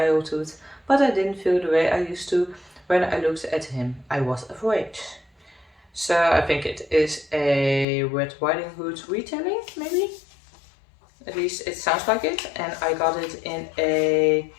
but I didn't feel the way I used to when I looked at him. I was afraid. So I think it is a Red Riding Hood retelling, maybe? At least it sounds like it. And I got it in a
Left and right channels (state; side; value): drops out; right; at 7.9 s